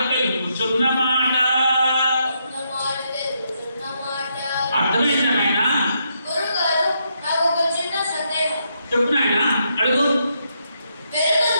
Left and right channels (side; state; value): both; inverted; correlation -0.79